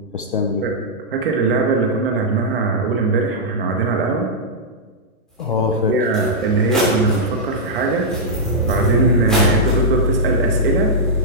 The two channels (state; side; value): normal; both; correlation -0.09